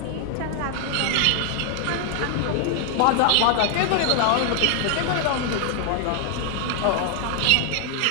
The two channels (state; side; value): different; both; correlation 0.00